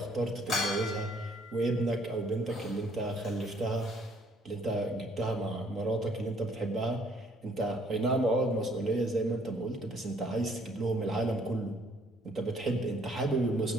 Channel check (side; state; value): both; normal; correlation 0.63